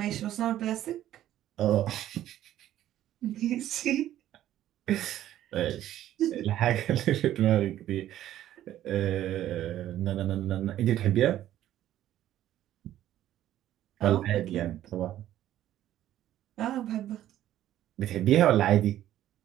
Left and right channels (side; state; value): left; quieter; 12.6 dB